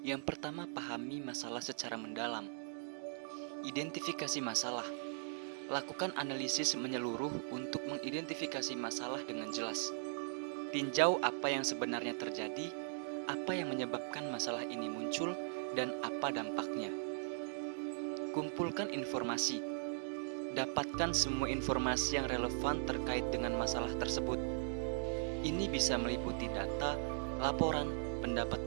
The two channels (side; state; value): left; silent; digital silence